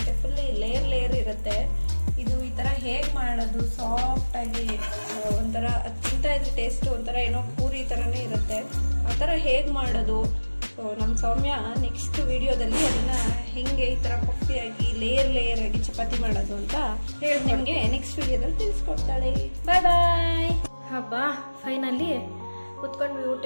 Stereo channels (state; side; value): inverted; both; correlation -1.00